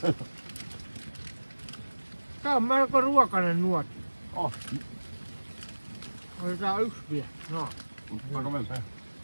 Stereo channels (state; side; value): inverted; both; correlation -1.00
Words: Tää on melko ruokainen nuotti. Oh. Otetaan yksi vielä. No. Ottaako vielä se?